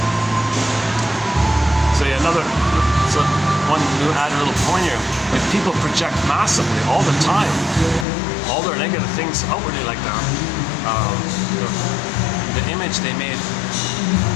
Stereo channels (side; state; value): right; drops out; at 8.1 s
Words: So one new added little point here. If people project massively all the time, all their negative things outwardly like that, the image they made